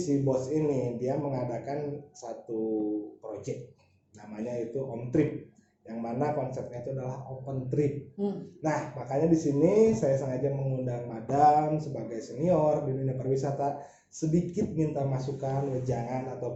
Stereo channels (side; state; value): both; identical; correlation 1.00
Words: bos ini dia mengadakan satu project, namanya itu Om Trip, yang mana konsepnya itu adalah open trip. Nah, makanya di sini saya sengaja mengundang Madam sebagai senior di dunia pariwisata, sedikit minta masukan, wejangan